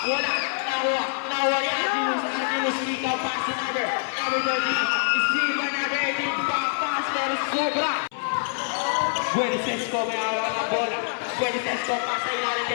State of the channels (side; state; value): right; silent; 62 dB below the other